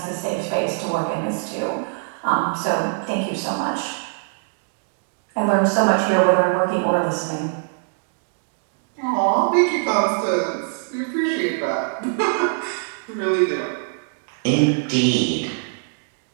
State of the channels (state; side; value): silent; left; digital silence